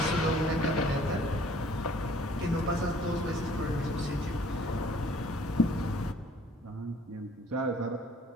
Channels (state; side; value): normal; both; correlation 0.57